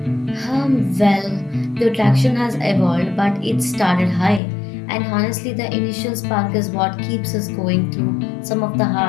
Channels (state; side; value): drops out; right; at 4.4 s